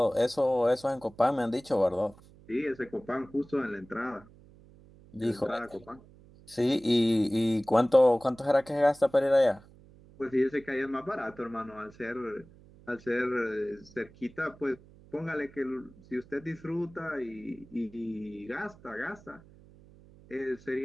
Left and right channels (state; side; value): noise; right; hum, 24 dB below the sound